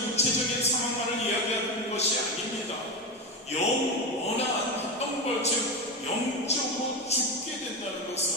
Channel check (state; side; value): normal; both; correlation 0.17